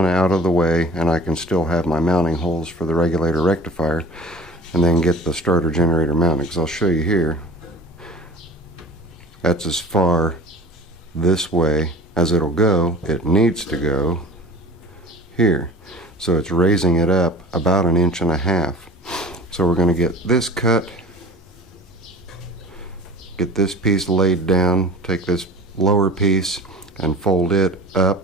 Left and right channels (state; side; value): normal; both; correlation 0.39